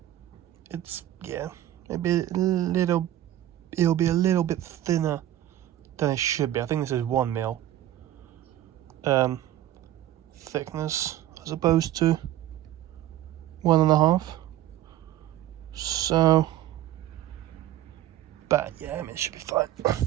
It's, yeah, it'll be a little bit thinner than it should be. I think this is 1 mil thickness as opposed to 1.5. So, but yeah, I mean, it should be fine.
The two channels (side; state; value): left; quieter; 13.3 dB